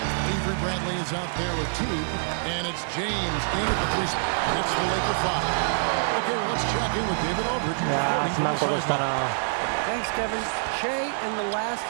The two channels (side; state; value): left; silent; digital silence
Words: Avery Bradley is out there with Teague, and it's James in at the 3 spot. That's the Laker 5. Okay, well, let's check in with David Aldridge. いやー、すまんことしたな。 Thanks, Kevin. Shea in the last